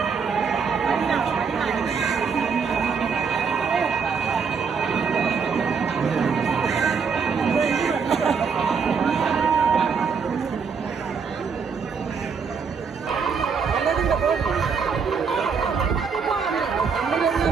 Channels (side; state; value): left; quieter; 5.8 dB